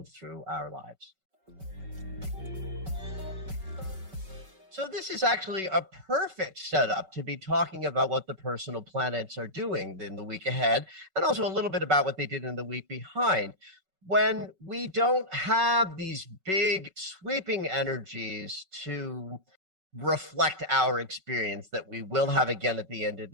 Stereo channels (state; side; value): late; left; 5.3 ms